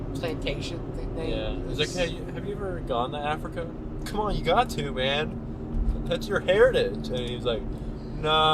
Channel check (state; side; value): identical; both; correlation 1.00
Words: plantation thing. yeah. He's like, hey, have you ever gone to Africa? Come on, you got to, man. That's your heritage. And he's like,